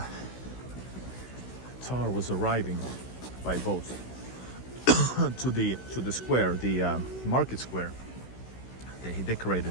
Tsar was arriving by boat to the square, the market square, he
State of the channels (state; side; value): late; right; 16 ms